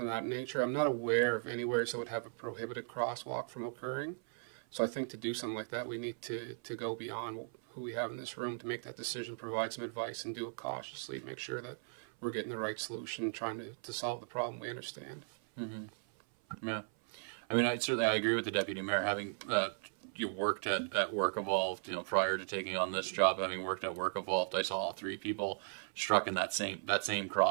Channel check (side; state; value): left; silent; 53 dB below the other